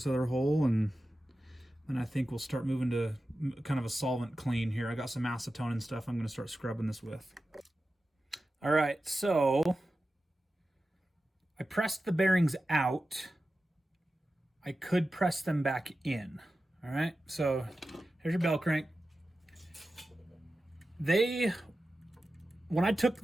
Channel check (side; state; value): both; normal; correlation 0.93